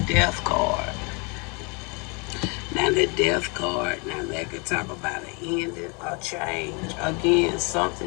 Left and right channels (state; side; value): quieter; right; 32.1 dB